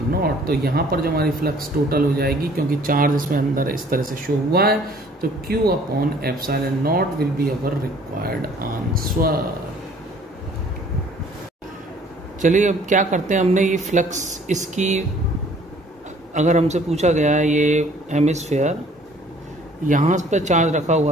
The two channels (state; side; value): normal; both; correlation 0.56